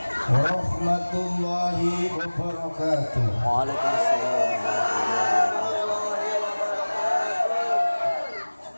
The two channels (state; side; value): inverted; both; correlation -1.00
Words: warahmatullahi wabarakatuh. Waalaikumsalam.